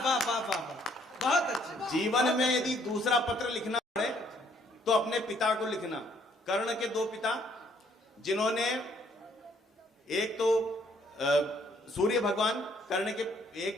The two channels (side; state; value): both; normal; correlation 0.65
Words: बहुत अच्छा। जीवन में यदि दूसरा पत्र लिखना पड़े तो अपने पिता को लिखना। कर्ण के 2 पिता, जिन्होंने एक तो सूर्य भगवान, कर्ण के